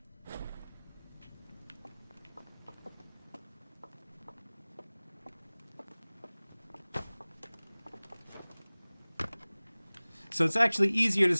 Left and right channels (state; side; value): inverted; both; correlation -1.00